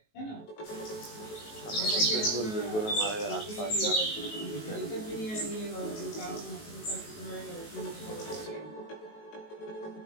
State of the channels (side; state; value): right; late; 19 ms